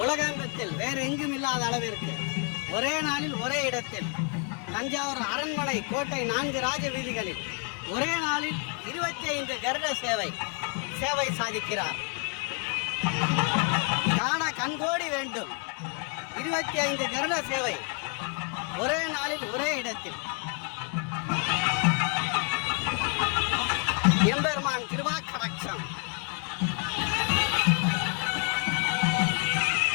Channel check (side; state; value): right; quieter; 37.2 dB